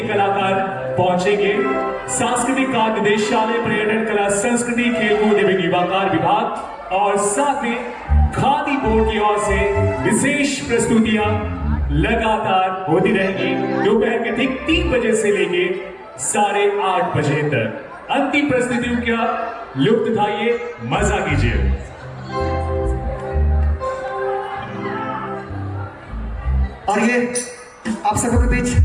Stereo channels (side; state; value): both; identical; correlation 1.00